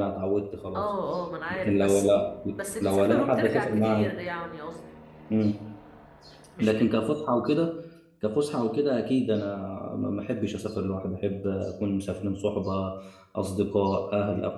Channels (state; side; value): identical; both; correlation 1.00